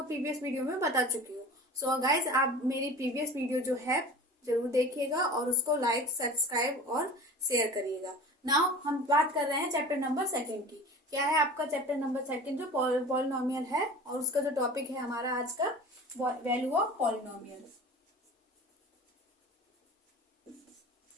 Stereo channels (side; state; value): both; normal; correlation 0.38